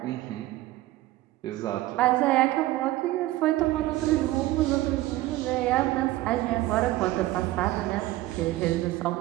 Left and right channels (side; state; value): left; quieter; 16.7 dB